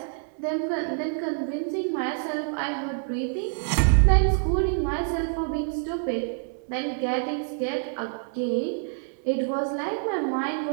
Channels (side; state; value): left; silent; 60 dB below the other